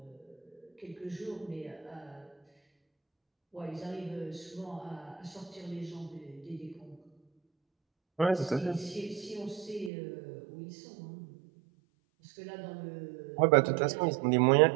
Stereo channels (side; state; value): left; drops out; at 9.9 s